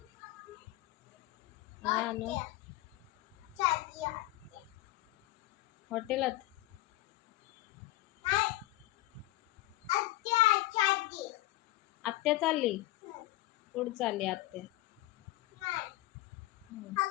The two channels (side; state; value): right; quieter; 17.6 dB